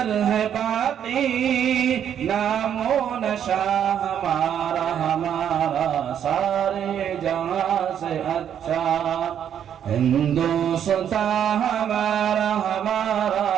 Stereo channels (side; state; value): left; quieter; 9.2 dB